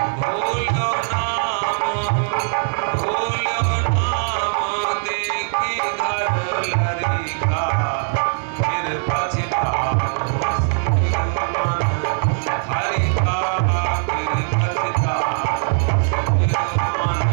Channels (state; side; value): silent; left; digital silence